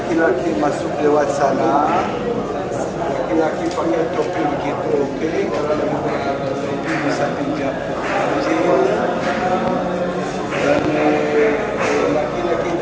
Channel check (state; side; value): identical; both; correlation 1.00